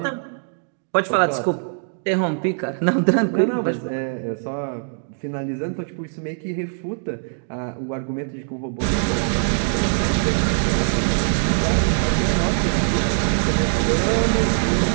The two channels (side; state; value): left; silent; digital silence